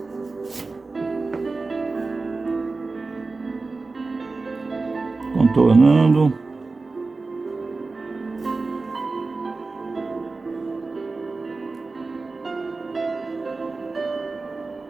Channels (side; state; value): left; quieter; 3.8 dB